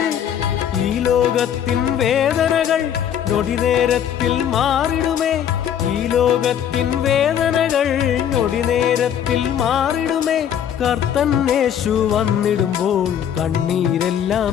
ഈ ലോകത്തിൻ വേദനകൾ നൊടിനേരത്തിൽ മാറിടുമേ, ഈ ലോകത്തിൻ വേദനകൾ നൊടിനേരത്തിൽ മാറിടുമേ. കർത്തൻ യേശു വന്നിടുമ്പോൾ കണ്ണീരെല്ലാം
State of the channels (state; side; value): quieter; right; 9.4 dB